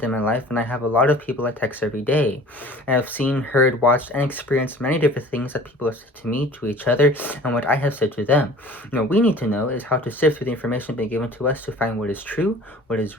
in my life, and I have a lot of people I text every day. I have seen, heard, watched, and experienced many different things that people have said to me, to each other, and what I have said to them. What we need to know is how to sift through the information being given to us to find what is true, what is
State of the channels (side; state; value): both; normal; correlation 0.46